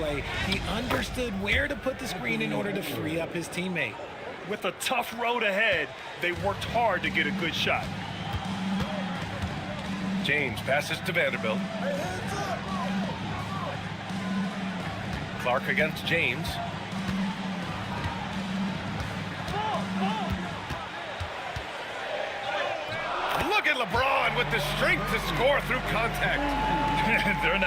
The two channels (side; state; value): both; identical; correlation 1.00